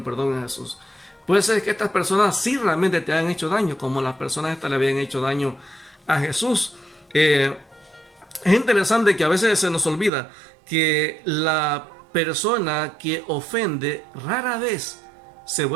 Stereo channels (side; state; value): left; drops out; at 10.1 s